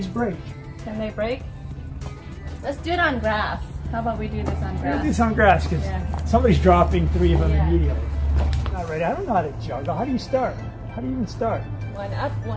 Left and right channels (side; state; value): both; identical; correlation 1.00